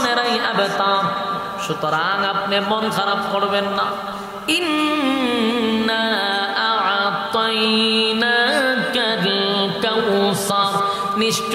আবতার। সুতরাং আপনি মন খারাপ করবেন না। ইন্না আ'তাইনাকাল কাউসার,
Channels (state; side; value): identical; both; correlation 1.00